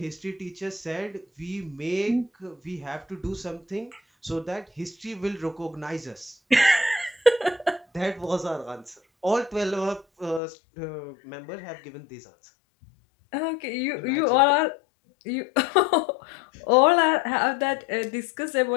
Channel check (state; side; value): drops out; right; at 10.4 s